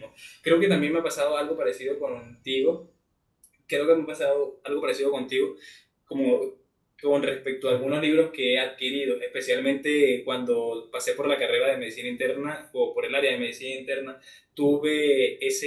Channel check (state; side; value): identical; both; correlation 1.00